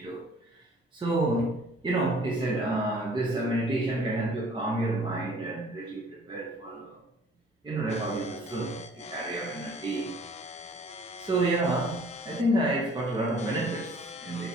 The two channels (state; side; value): normal; both; correlation 0.54